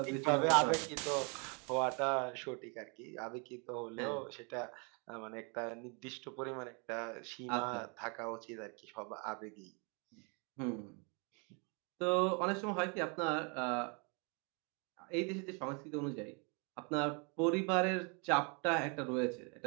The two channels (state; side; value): quieter; left; 34.5 dB